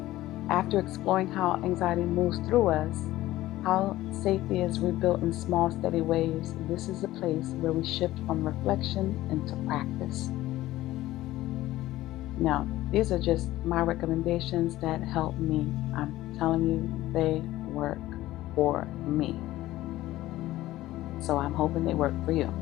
After exploring how anxiety moves through us, how safety is rebuilt in small, steady ways, this is a place where we shift from reflection into practice. Now, These are just my recommendations that help me. I'm telling you, they work for me. So I'm hoping they work for you.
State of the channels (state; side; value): quieter; right; 16.0 dB